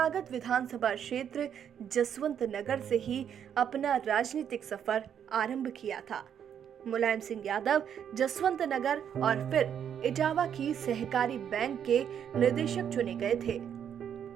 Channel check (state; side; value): quieter; left; 8.7 dB